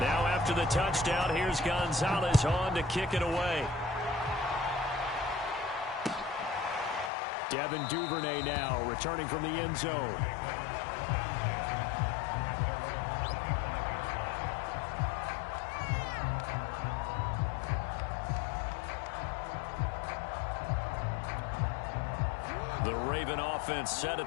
after the touchdown, here's Gonzalez on to kick it away. Devin Duvernay now returning from the end zone. The Raven offense set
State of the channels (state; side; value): drops out; right; at 7.1 s